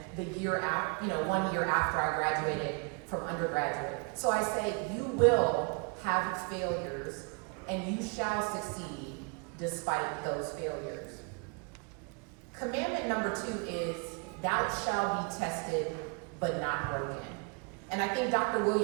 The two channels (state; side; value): quieter; left; 34.1 dB